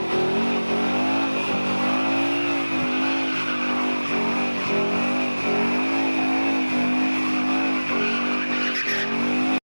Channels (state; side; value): inverted; both; correlation -1.00